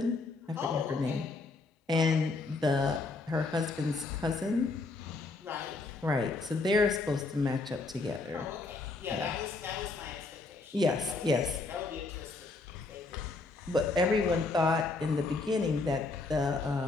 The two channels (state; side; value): quieter; right; 3.6 dB